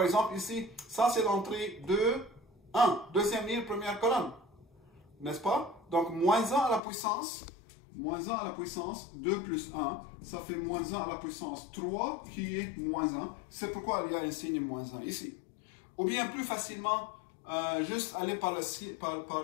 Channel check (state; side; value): drops out; right; at 6.8 s